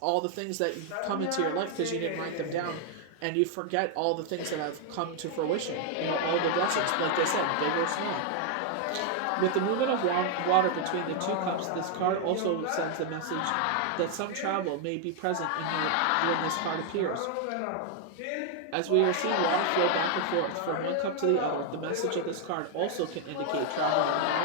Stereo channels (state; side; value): different; both; correlation 0.00